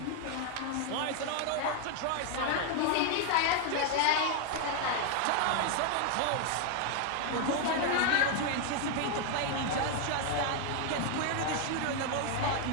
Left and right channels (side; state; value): both; different; correlation 0.01